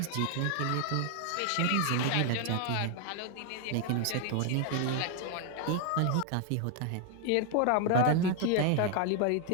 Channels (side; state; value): both; different; correlation 0.00